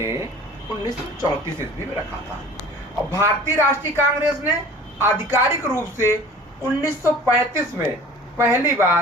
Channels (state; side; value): normal; both; correlation 0.44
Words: 1934 ईस्वी में रखा था और भारतीय राष्ट्रीय कांग्रेस ने आधिकारिक रूप से 1935 में पहली